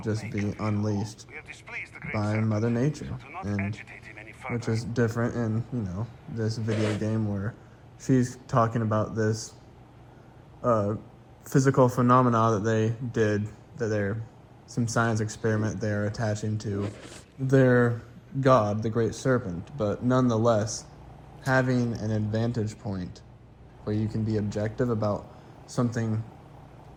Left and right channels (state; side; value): identical; both; correlation 1.00